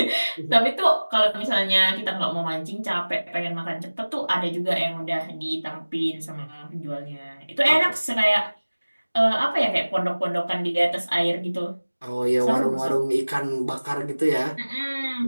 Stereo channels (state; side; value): inverted; both; correlation -1.00